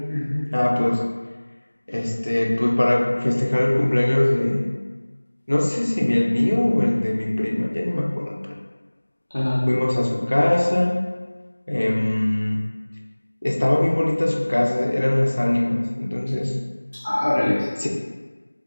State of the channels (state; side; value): inverted; both; correlation -1.00